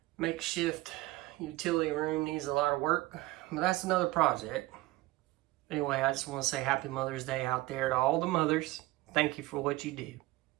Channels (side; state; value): left; quieter; 18.9 dB